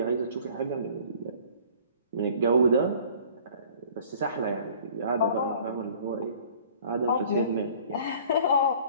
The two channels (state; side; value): inverted; both; correlation -0.51